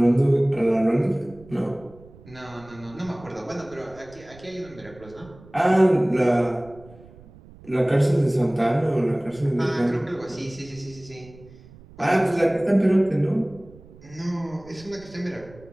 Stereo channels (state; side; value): noise; right; rumble, 22 dB below the sound